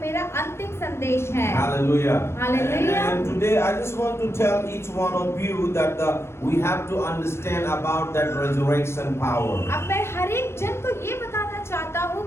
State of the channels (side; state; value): right; late; 0.12 ms